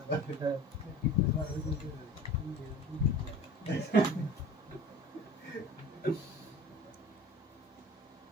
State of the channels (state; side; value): normal; both; correlation 0.41